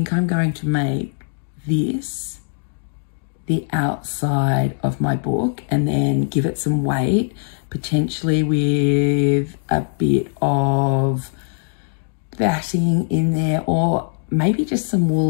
I'm going to make this the outside of my book and then give it some weight, potentially with a bit of batting in there, or maybe just some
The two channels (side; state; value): right; silent; digital silence